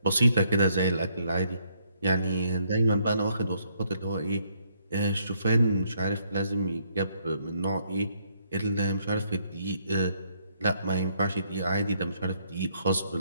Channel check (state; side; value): inverted; both; correlation -0.71